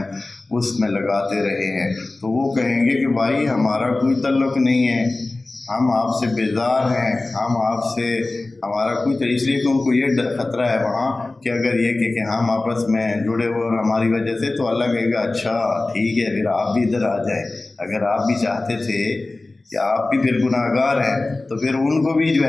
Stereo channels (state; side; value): quieter; right; 3.1 dB